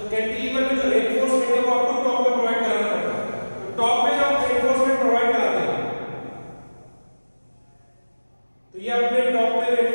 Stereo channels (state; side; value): inverted; both; correlation -1.00